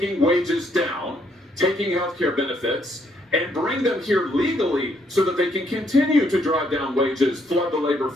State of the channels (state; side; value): normal; both; correlation 0.71